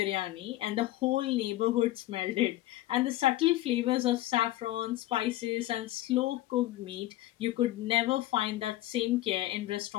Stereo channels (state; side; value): quieter; right; 16.0 dB